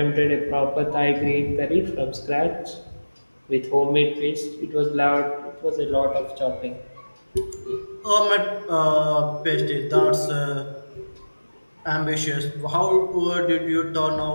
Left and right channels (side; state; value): both; inverted; correlation -1.00